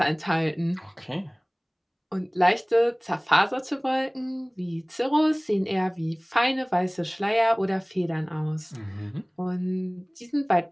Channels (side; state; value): both; identical; correlation 1.00